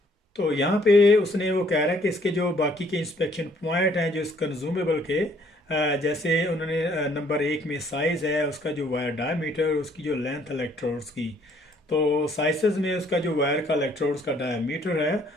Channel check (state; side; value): normal; both; correlation 0.63